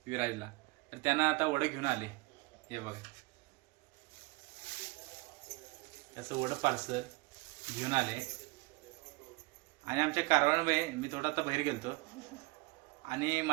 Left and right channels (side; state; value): left; quieter; 24.6 dB